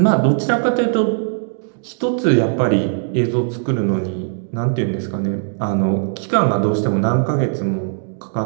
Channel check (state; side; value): silent; left; digital silence